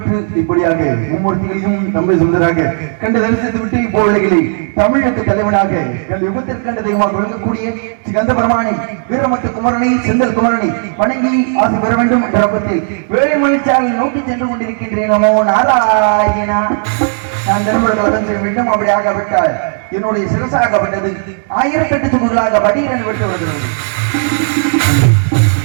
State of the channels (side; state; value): left; silent; digital silence